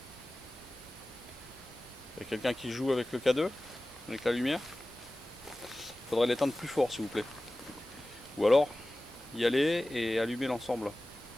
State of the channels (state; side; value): normal; both; correlation 0.96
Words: Il y a quelqu'un qui joue avec le K2? Avec la lumière? Il faudrait l'éteindre plus fort s'il vous plaît. Ou alors y aller et allumer l'ensemble.